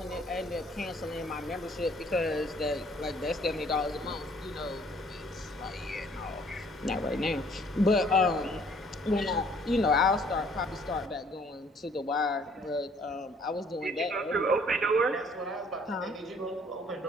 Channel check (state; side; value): normal; both; correlation 0.60